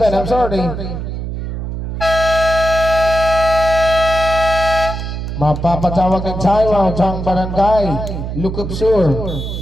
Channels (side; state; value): right; noise; hum, 5 dB below the sound